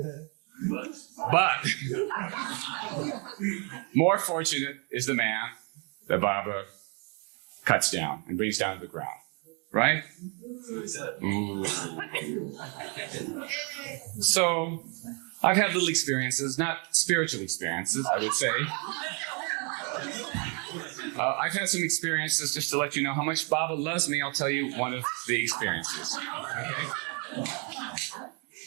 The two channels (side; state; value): left; quieter; 35.3 dB